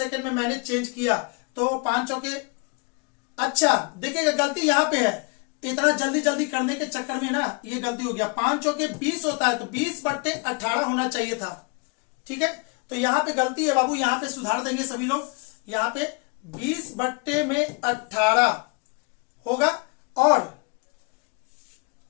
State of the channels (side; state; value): right; quieter; 31.4 dB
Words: में मैंने चेंज किया, तो 5 चौके। अच्छा देखिएगा, गलती यहाँ पे है, इतना जल्दी जल्दी करने के चक्कर में ना ये गलती हो गया। 5 चौके 20 होता है, तो 20/18 होना चाहिए था। ठीक है, तो यहाँ पे गलती है बाबू, यहाँ पे सुधार देंगे सभी लोग। यहाँ पे 20/18 होगा, और